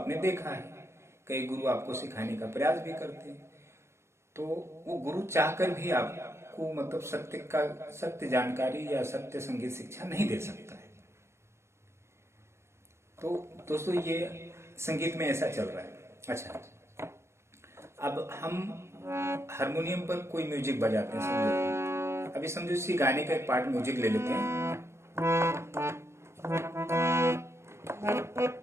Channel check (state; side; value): late; left; 0.13 ms